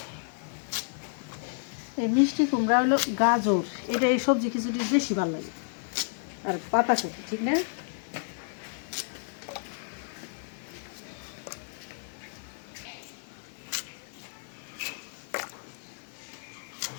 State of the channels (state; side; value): silent; right; digital silence